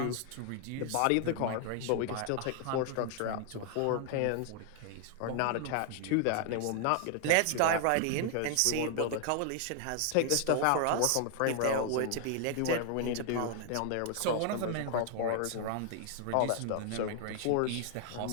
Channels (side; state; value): both; different; correlation 0.00